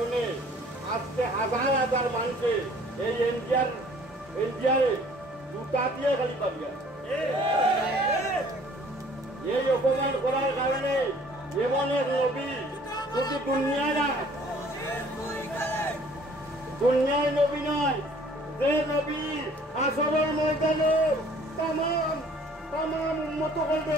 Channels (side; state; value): both; normal; correlation 0.55